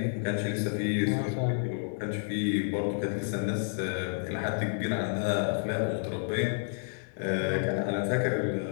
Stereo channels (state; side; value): silent; right; digital silence